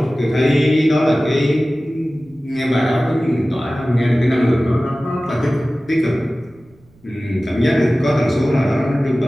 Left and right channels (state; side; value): noise; right; rumble, 30 dB below the sound